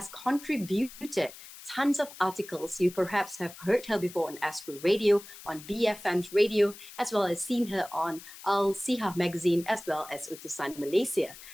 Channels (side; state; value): left; noise; hiss, 16 dB below the sound